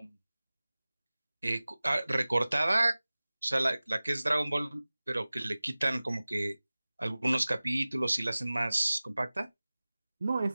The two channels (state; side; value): inverted; both; correlation -0.98